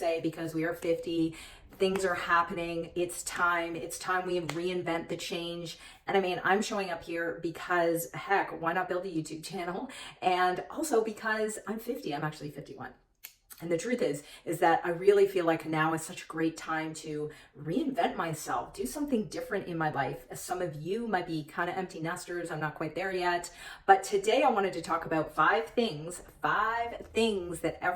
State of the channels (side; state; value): both; identical; correlation 1.00